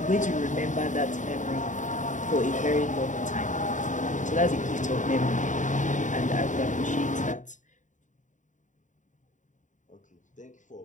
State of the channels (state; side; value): late; right; 0.36 ms